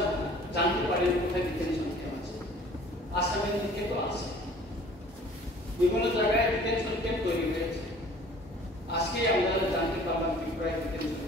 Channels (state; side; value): normal; both; correlation 0.50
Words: জানতে পারি কোথায় ডিটেনশন ক্যাম্প আছে। আসামের দিকে তো আছে, বিভিন্ন জায়গায় ডিটেনশন ক্যাম্প তৈরি হয়েছে। আজকে আমরা জানতে পারলাম ত্রিপুরায় ডিটেনশন